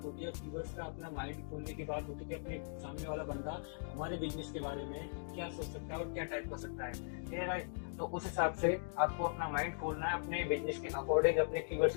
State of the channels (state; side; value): silent; right; digital silence